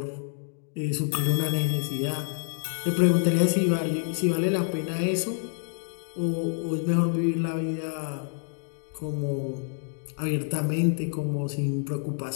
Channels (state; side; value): silent; right; 60 dB below the other